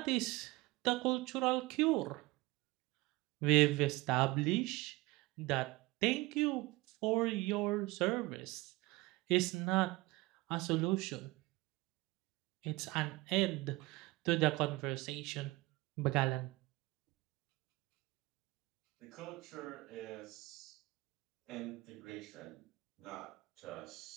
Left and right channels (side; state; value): left; quieter; 21.3 dB